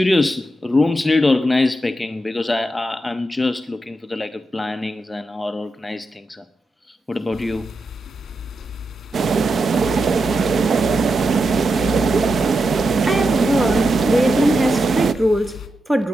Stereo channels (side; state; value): both; normal; correlation 0.87